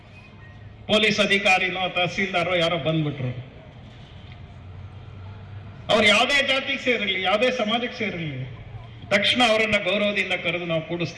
ಪೊಲೀಸ್ ಅಧಿಕಾರಿನೋ ತಹಸೀಲ್ದಾರೋ ಯಾರೋ ಬಂದ್ಬಿಟ್ರು, ಅವ್ರು ಯಾವುದೇ ಜಾತಿಗೆ ಸೇರಿರಲಿ, ಯಾವುದೇ ಸಮಾಜಕ್ಕೆ ಸೇರಿರಲಿ, ತಕ್ಷಣ ಅವರನ್ನ ಗೌರವದಿಂದ ಕರೆದು ನಾವು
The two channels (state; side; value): identical; both; correlation 1.00